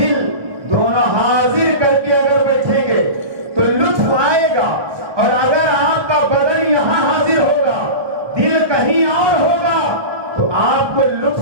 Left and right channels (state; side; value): late; left; 1.2 ms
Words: دونوں حاضر کر کے اگر بیٹھیں گے تو لطف آئے گا, اور اگر آپ کا بدن یہاں حاضر ہوگا دل کہیں اور ہوگا تو آپ کو